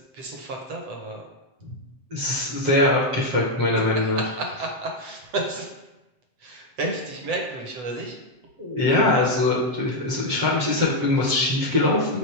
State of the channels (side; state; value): left; late; 7.6 ms